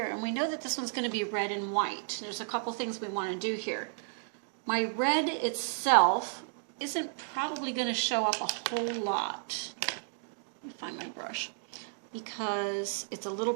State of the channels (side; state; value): left; silent; digital silence